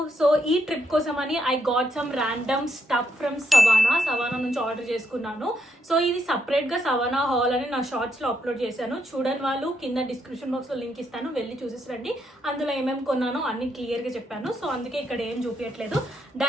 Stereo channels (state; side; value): normal; both; correlation 0.77